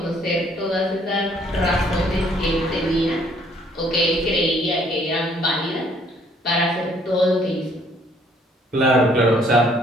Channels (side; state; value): both; normal; correlation 0.63